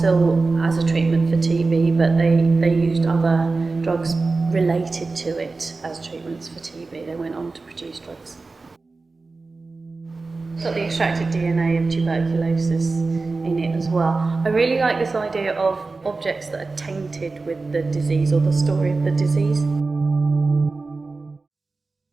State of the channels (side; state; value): left; quieter; 3.8 dB